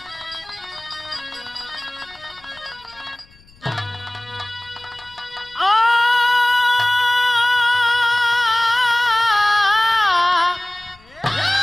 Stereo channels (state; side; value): noise; left; rumble, 28 dB below the sound